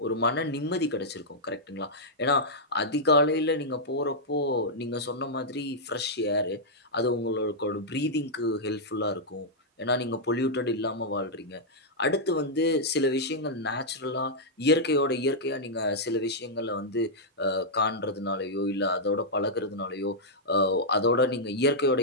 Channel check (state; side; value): normal; both; correlation -0.07